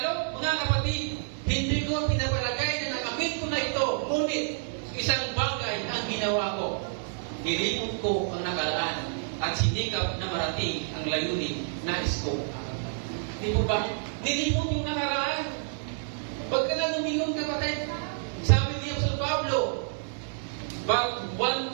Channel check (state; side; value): silent; left; digital silence